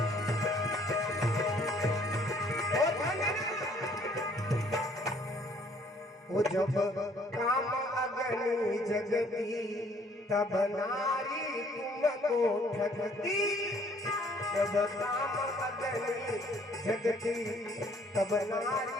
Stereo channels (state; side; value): normal; both; correlation 0.60